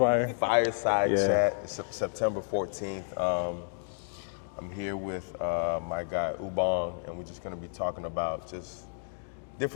Fireside Yeah. chat. It's September 14th. I'm here with my guy Ubong, and we're just going to be talking about just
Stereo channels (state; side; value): silent; right; digital silence